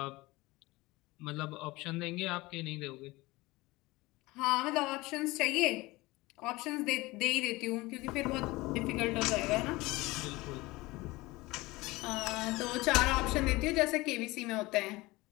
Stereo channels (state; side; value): quieter; right; 21.2 dB